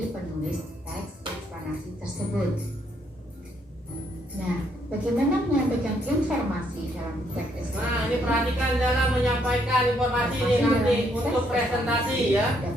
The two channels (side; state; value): both; normal; correlation 0.72